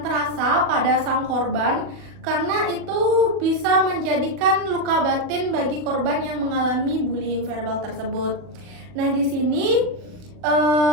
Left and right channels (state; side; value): late; left; 40 ms